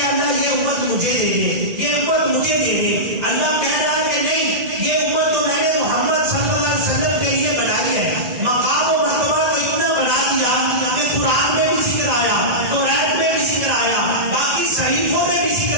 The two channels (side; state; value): left; late; 1.9 ms